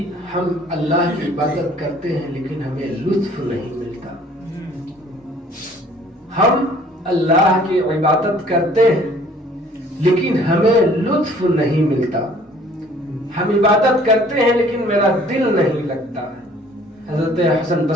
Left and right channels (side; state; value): both; normal; correlation 0.55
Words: ہم اللہ کی عبادت کرتے ہیں لیکن ہمیں لطف نہیں ملتا. ہم اللہ کی عبادت کرتے ہیں لیکن ہمیں لطف نہیں ملتا. ہم عبادت کرتے ہیں لیکن میرا دل نہیں لگتا. حضرت حسن